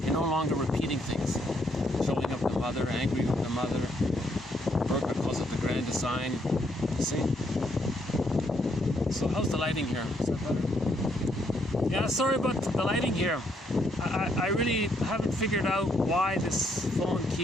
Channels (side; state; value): both; normal; correlation 0.73